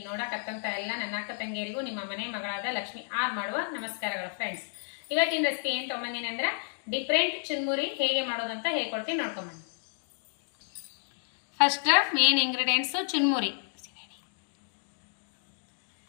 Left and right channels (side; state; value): right; silent; digital silence